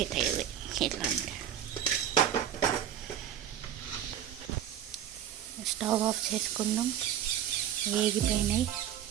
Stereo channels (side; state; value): left; quieter; 10.3 dB